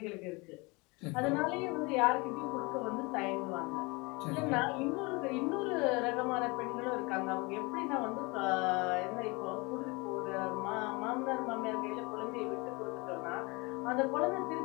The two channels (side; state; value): right; quieter; 26.7 dB